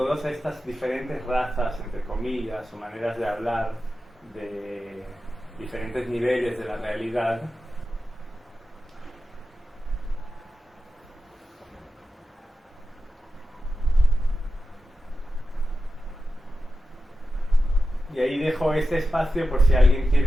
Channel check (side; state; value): both; normal; correlation 0.91